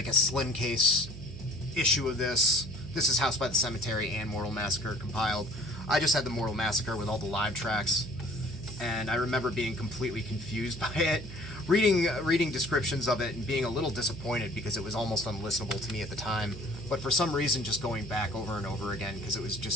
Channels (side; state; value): right; noise; hum, 12 dB below the sound